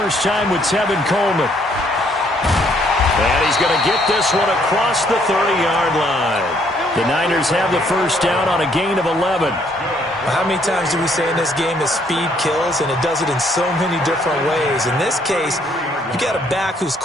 time with Tevin Coleman. And he's going to get this one across the 30-yard line. The Niners have the first down on a gain of 11. How many times do we say in this game that speed kills, and it does it in so many different ways? In this case, you got a back who's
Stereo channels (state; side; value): normal; both; correlation 0.67